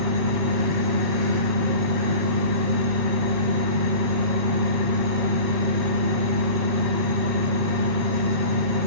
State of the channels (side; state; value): left; late; 8.0 ms